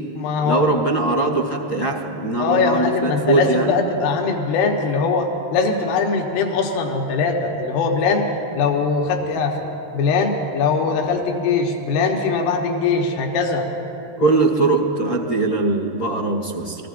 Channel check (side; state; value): right; late; 13 ms